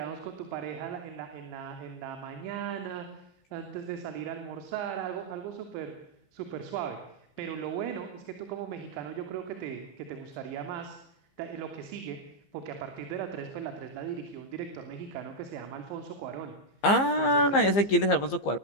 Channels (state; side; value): late; right; 15 ms